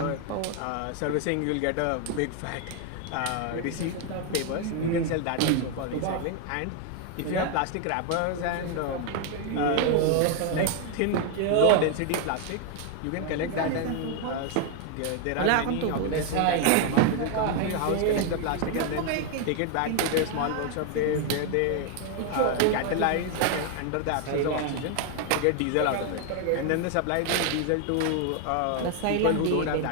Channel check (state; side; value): different; both; correlation 0.01